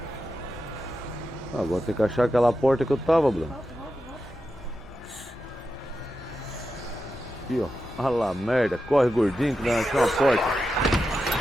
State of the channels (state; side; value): noise; left; hum, 20 dB below the sound